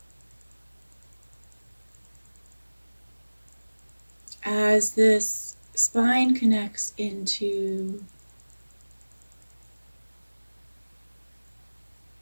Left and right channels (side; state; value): both; inverted; correlation -1.00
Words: As this spine connects into